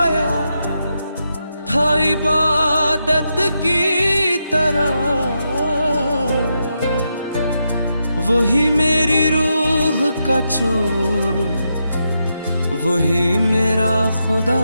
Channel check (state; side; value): inverted; both; correlation -0.84